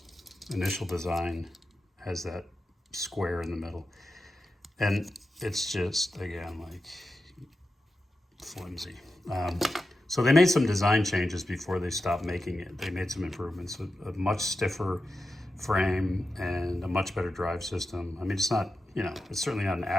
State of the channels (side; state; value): both; normal; correlation 0.91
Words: initial design has that square in the middle. And it's just, again, like flimsy. So they made some design changes before they stopped making it. They made some improvements, a much stiffer frame and a much better drive system. I mean, it's not, it's certainly not an